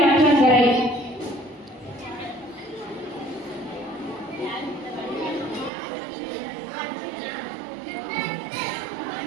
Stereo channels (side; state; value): left; drops out; at 5.7 s